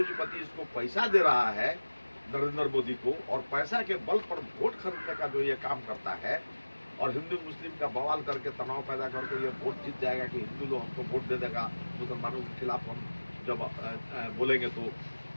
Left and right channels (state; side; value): inverted; both; correlation -1.00